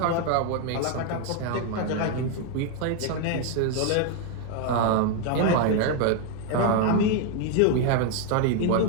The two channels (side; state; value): both; different; correlation 0.01